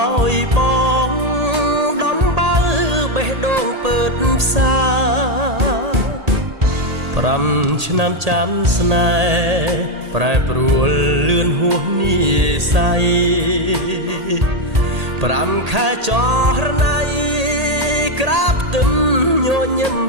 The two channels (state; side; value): late; left; 1.8 ms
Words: ្យបងដំបើបេះដូងពើតផ្សា5ឆ្នាំចាំស្នេហ៍ប្រែប្រួលលឿនហួសនិស័យ5ខែចរណៃក្រាបទឹមញញឹម